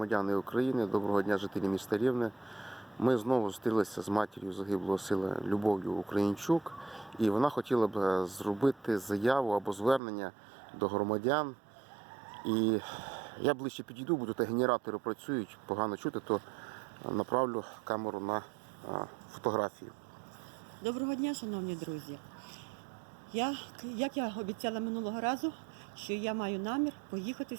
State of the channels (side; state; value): left; drops out; at 10.0 s